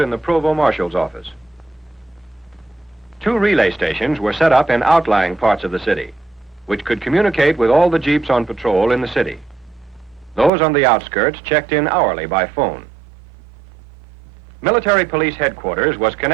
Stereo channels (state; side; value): drops out; left; at 10.5 s